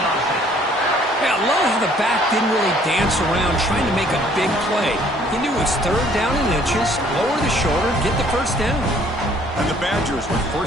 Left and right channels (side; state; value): both; normal; correlation 0.60